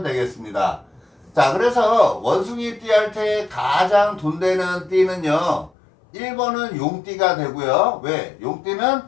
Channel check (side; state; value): right; drops out; at 5.7 s